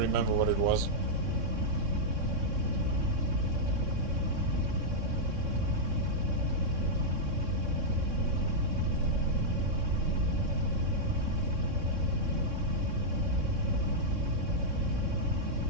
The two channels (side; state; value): left; late; 3.6 ms